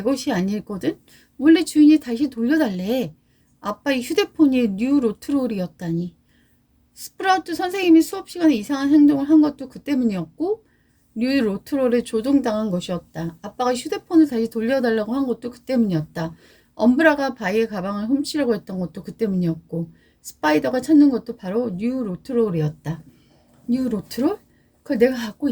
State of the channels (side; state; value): both; identical; correlation 1.00